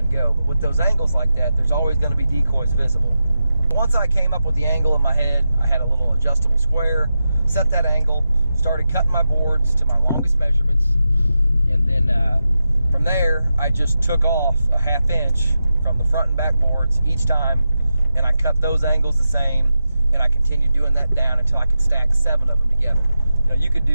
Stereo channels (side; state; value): both; inverted; correlation -0.90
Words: go. But with those angles like that, there's always going to be decoys visible. Once I came up with the angle in my head, I had a little adjustable square, set that angle, started cutting my boards to my longest measurements, and then from there I just took off a 1/2 inch from the front and back boards each time, and I cut those angles the same, and I continued doing that down until I could stack 7 of them together. You know, you could